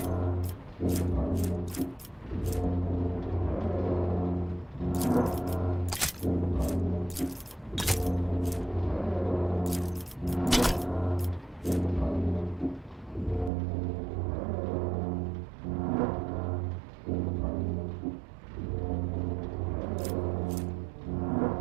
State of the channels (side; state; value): left; drops out; at 13.5 s